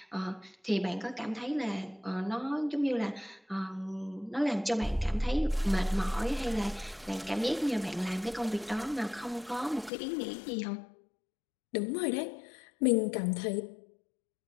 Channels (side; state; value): right; drops out; at 9.9 s